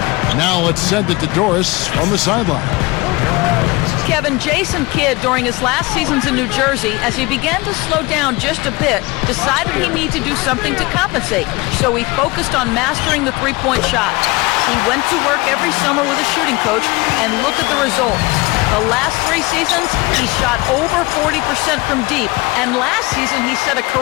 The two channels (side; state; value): right; quieter; 23.4 dB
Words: Now let's send it to Doris from the sideline. Kevin, Jason Kidd, during his last seasons in New Jersey, as he began to slow down just a bit, decided he needed to do something to compensate. So he focused on mastering the three-point shot. He went to work every summer with a shooting coach, and look at the results. The last 3 seasons, he shot over 40% from deep, and last season he set a